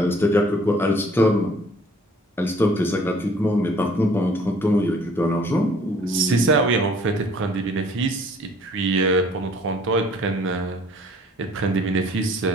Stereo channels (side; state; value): both; normal; correlation 0.56